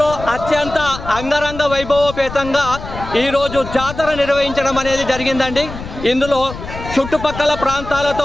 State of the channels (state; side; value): noise; left; rumble, 11 dB below the sound